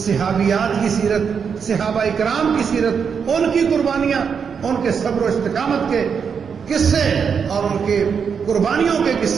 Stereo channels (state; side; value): quieter; left; 6.5 dB